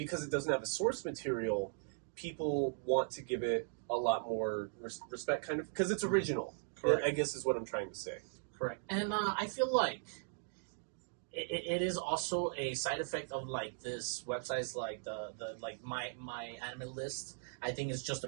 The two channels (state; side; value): silent; left; digital silence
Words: it doesn't have a source material, people want to give it a lot more respect, kind of because it's original. Correct. I guess is what I'm trying to say. Correct, and I feel like. It is also a side effect of this website's the my anime list. I think it's just a